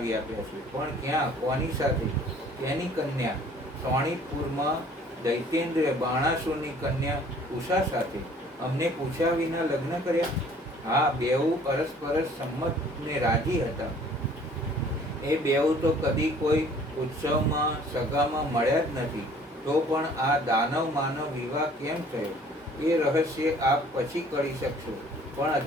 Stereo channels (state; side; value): normal; both; correlation 0.54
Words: આપ્યા છે. પણ ક્યાં, કોની સાથે? તેની કન્યા સોણીતપુરમાં દૈત્યેન્દ્ર બાણાસુરની કન્યા ઉષા સાથે. અમને પૂછ્યા વિના લગ્ન કર્યા? હા, બેઉ પરસ્પરસ સંમત ને રાજી હતા. એ બેઉ તો કદી કોઈ ઉત્સવમાં સગામાં મળ્યા જ નથી. તો પણ આ દાનવ માનવ વિવાહ કેમ થયો એ રહસ્ય આપ પછી કરી શકશો. પણ